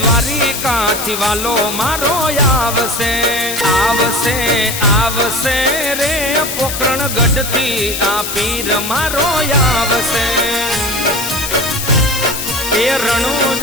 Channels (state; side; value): noise; left; hiss, 5 dB below the sound